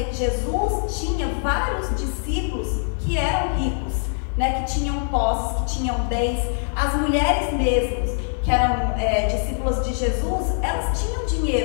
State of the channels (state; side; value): silent; right; digital silence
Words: que Jesus tinha vários discípulos que eram ricos, né, que tinham posses, que tinham bens. As mulheres mesmas, que eram discípulas de Jesus, elas tinham